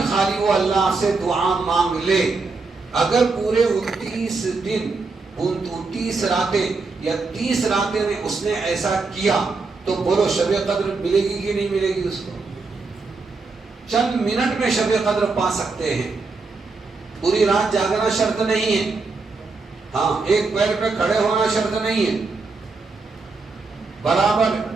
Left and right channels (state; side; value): quieter; left; 4.0 dB